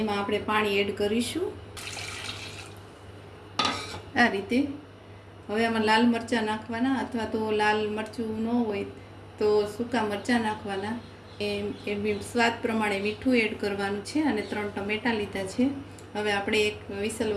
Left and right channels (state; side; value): identical; both; correlation 1.00